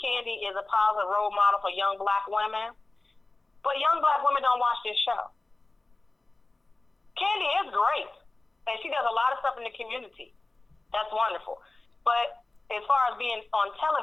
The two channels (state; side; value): quieter; right; 3.1 dB